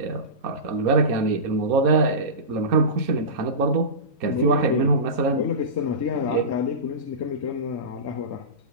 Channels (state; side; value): late; left; 4.3 ms